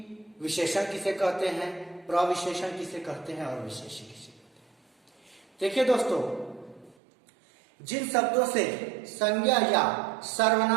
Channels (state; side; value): drops out; left; at 7.0 s